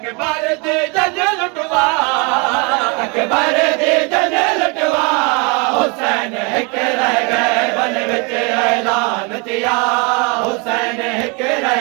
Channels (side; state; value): left; quieter; 31.2 dB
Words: दी जज लुटवा अकबर दी जज लुटवा हुसैन हिक रह गए बन विच ऐलान थिया हुसैन हिक रह